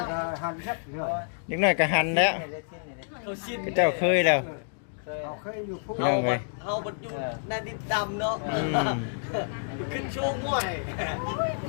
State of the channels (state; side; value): silent; right; digital silence